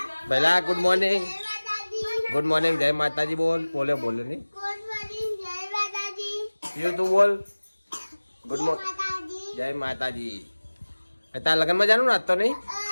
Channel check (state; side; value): inverted; both; correlation -1.00